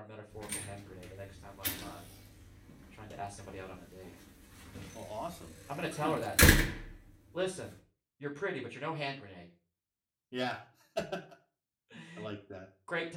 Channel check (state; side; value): identical; both; correlation 1.00